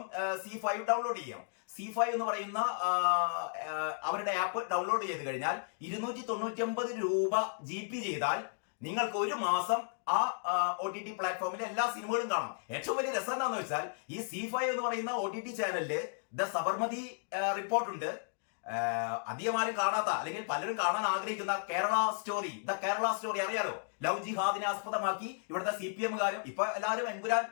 C5 ഡൗൺലോഡ് ചെയ്യാം. C5 എന്ന് പറയുന്ന അവരുടെ ആപ്പ് ഡൗൺലോഡ് ചെയ്ത് കഴിഞ്ഞാൽ 299 രൂപ GB ചെയ്താൽ നിങ്ങൾക്ക് ഒരു മാസം ആ OTT പ്ലാറ്റ്ഫോമിലെ എല്ലാ സിനിമകളും കാണാം. ഏറ്റവും വലിയ രസം എന്താണെന്ന് വെച്ചാൽ ഈ C5 എന്ന് പറയുന്ന OTT ചാനലില് ദ സബർമതി റിപ്പോർട്ട് ഉണ്ട്. അധികം ആരും കാണാത്ത, അല്ലെങ്കിൽ പലരും കാണാൻ ആഗ്രഹിക്കുന്ന കേരള സ്റ്റോറി അറിയാലോ. ലവ് ജിഹാദിനെ ആസ്പദമാക്കി ഇവിടുത്തെ CPM-കാരും ഇപ്പൊ എല്ലാവരും എമ്പുരാൻ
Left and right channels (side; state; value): right; silent; digital silence